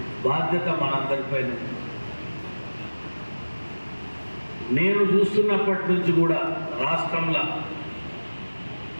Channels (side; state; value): both; inverted; correlation -1.00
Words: బాధ్యత మనందరిపైన. నేను చూస్తున్నప్పటి నుంచి కూడా రాష్ట్రంలో